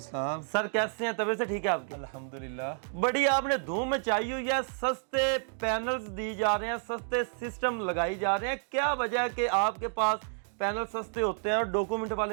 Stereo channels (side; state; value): left; silent; digital silence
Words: सर कैसे हैं, तबीयत से ठीक है आपकी? अल्हम्दुलिल्लाह। बड़ी आपने धूम मचाई हुई है, सस्ते पैनल्स दी जा रहे हैं, सस्ते सिस्टम लगाई जा रहे हैं। क्या वजह है कि आपके पास पैनल सस्ते होते हैं और डॉक्यूमेंट